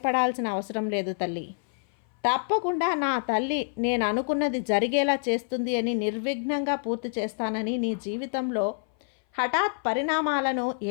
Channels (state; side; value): silent; right; 57 dB below the other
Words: అవసరం లేదు తల్లి. తప్పకుండా నా తల్లి నేను అనుకున్నది జరిగేలా చేస్తుంది అని నిర్విఘ్నంగా పూర్తి చేస్తానని. నీ జీవితంలో హఠాత్ పరిణామాలను